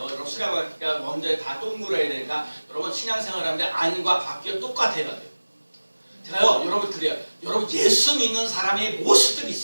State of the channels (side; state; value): both; inverted; correlation -1.00